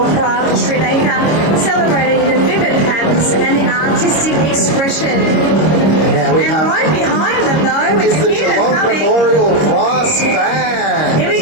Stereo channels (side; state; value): right; late; 26 ms